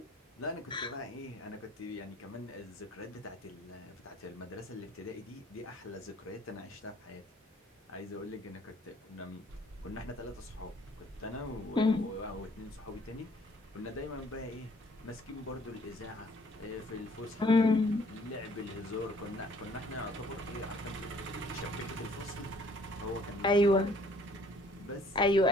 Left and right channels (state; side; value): normal; both; correlation 0.59